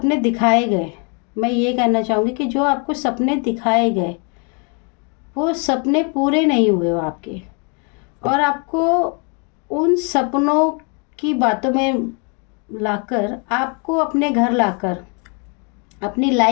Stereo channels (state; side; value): quieter; right; 36.0 dB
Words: दिखाए गए, मैं ये कहना चाहूँगी कि जो आपको सपने दिखाए गए वो सपने पूरे नहीं हुए वो आपके, और आपको उन सपनों की बातों में लाकर, आपको अपने घर लाकर, अपनी